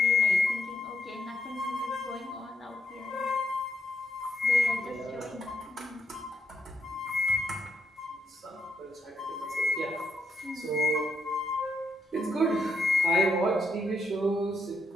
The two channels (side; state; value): both; normal; correlation 0.78